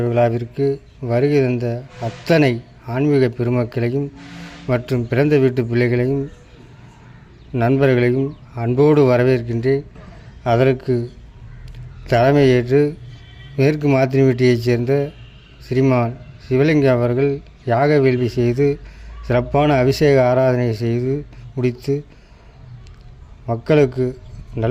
விழாவிற்கு வருகை தந்த அத்தனை ஆன்மீக பெருமக்களையும் மற்றும் பிறந்த வீட்டு பிள்ளைகளையும் நண்பர்களையும் அன்போடு வரவேற்கின்றேன். அதற்கு தலைமையேற்று மேற்கு மாத்தினிவெட்டியைச் சேர்ந்த ஸ்ரீமான் சிவலிங்கம் அவர்கள் யாக வேள்வி செய்து சிறப்பான அபிஷேக ஆராதனை செய்து முடித்து மக்களுக்கு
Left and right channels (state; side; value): identical; both; correlation 1.00